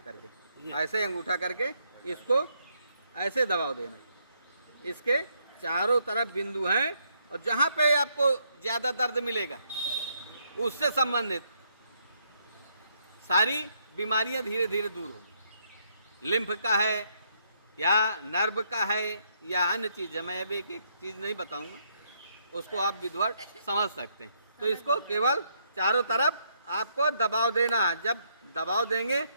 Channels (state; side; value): inverted; both; correlation -0.74